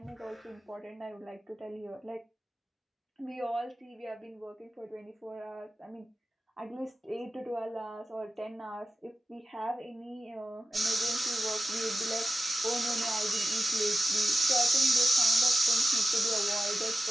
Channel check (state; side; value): normal; both; correlation 0.93